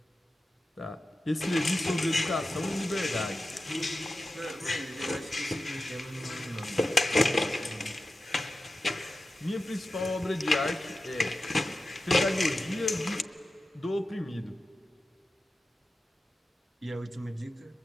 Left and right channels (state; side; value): normal; both; correlation 0.93